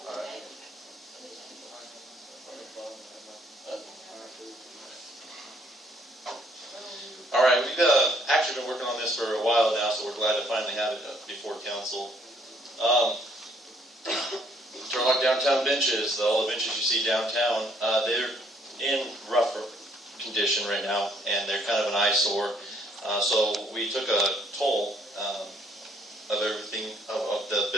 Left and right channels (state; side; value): normal; both; correlation 0.66